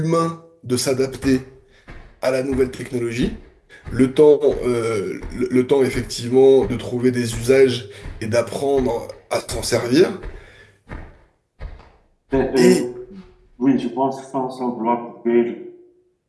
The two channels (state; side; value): identical; both; correlation 1.00